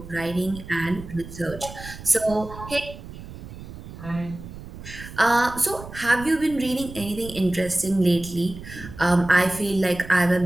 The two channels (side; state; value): right; noise; rumble, 13 dB below the sound